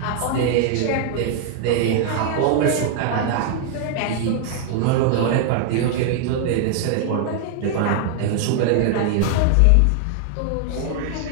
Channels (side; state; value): both; different; correlation 0.00